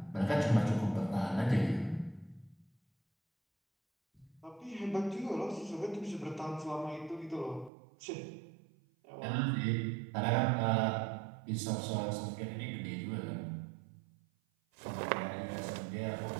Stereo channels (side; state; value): left; drops out; at 7.7 s